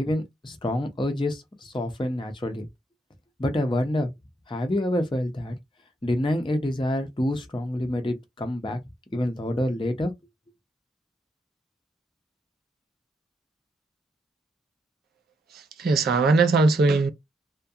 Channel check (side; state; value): both; normal; correlation 0.78